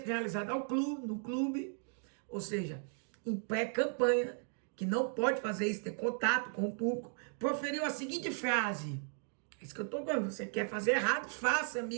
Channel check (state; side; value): silent; left; 54 dB below the other